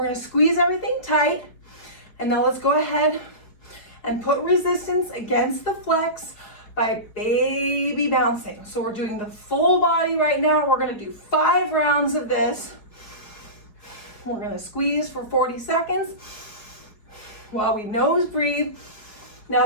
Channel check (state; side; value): late; right; 4.8 ms